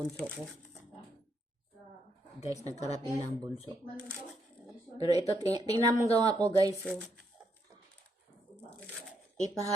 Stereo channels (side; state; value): both; normal; correlation 0.77